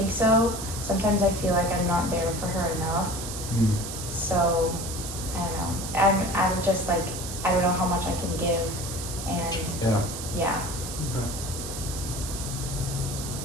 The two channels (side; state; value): right; noise; hiss, 8 dB below the sound